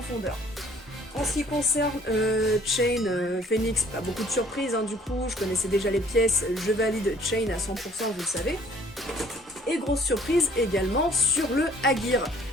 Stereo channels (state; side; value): normal; both; correlation 0.58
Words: En ce qui concerne Chain, Phoenix, pas beaucoup de surprises, hein, du coup, je connaissais déjà les pièces, je valide Chain à 100%, vous le savez. Et grosse surprise également sur le Aegir.